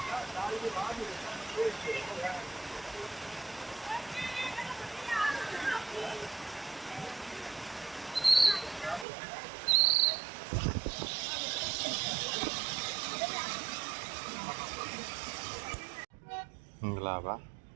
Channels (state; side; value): drops out; left; at 9.1 s